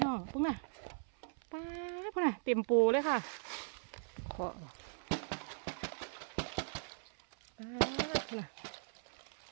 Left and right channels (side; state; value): left; silent; 52 dB below the other